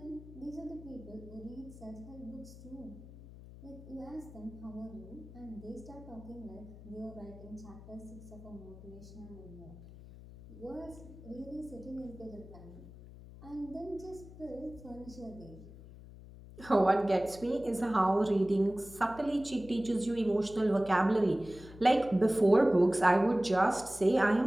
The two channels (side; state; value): left; noise; hum, 17 dB below the sound